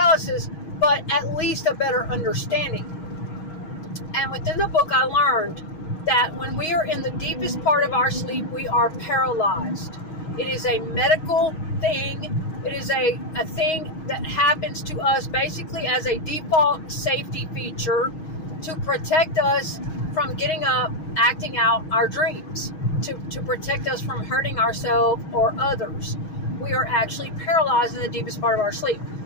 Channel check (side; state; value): right; late; 6.3 ms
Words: but at least a better understanding. And within the book, I learned that when we are in the deepest part of our sleep, we are paralyzed. It is a medical thing. It is a thing that happens to us basically as a default safety feature to protect us from getting up, acting out our dreams, to protect us from hurting ourselves or others. We are actually paralyzed in the deepest part of our sleep.